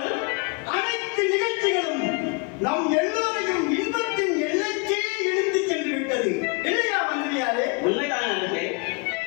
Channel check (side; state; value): right; quieter; 31.2 dB